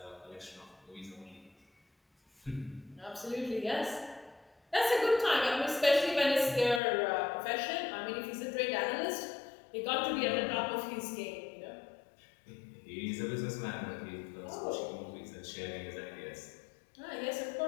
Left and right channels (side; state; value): right; drops out; at 6.8 s